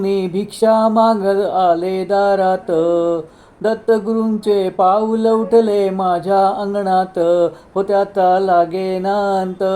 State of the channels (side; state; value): both; identical; correlation 1.00